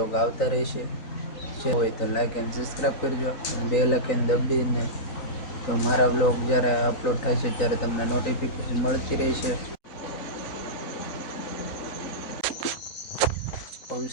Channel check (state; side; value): late; right; 3.9 ms